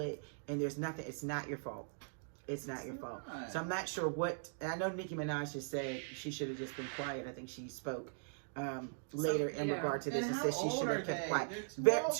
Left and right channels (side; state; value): left; silent; digital silence